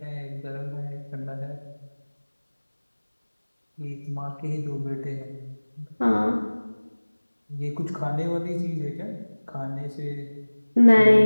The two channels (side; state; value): both; inverted; correlation -1.00